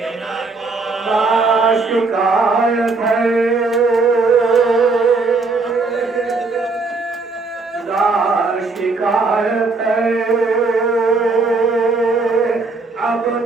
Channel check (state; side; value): quieter; left; 3.8 dB